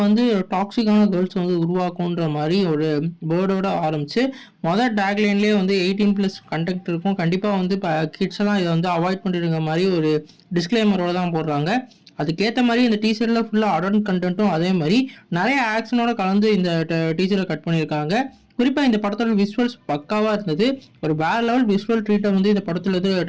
வந்து டாக்ஸிக்கான கேர்ள்ஸ் வந்து உருவாக்குன்ற மாதிரி ஒரு வேர்டோட ஆரம்பிச்சு மொதல் டேக்லைன்லேயே வந்து 18+ கண்டெக்ட் இருக்கும். கண்டிப்பாக வந்து இப்போ கிட்ஸ் எல்லாம் இதை வந்து அவாய்ட் பண்ணிடுங்க மாதிரி ஒரு டிஸ்க்ளைமரோட தான் போடுறாங்க. அதுக்கேற்ற மாதிரி இந்த டீசரில் ஃபுல்லாக அடல்ட் கண்டென்ட்டும் அதே மாதிரி நிறைய ஆக்ஷனோட கலந்து இந்த டீசரை கட் பண்ணியிருக்காங்க. குறிப்பாக இந்த படத்தோட விஷுவல்ஸ் பக்காவாக இருந்தது. ஒரு வேற லெவல் விஷுவல் ட்ரீட்டை வந்து இந்த படத்தில் வந்து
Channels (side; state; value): both; identical; correlation 1.00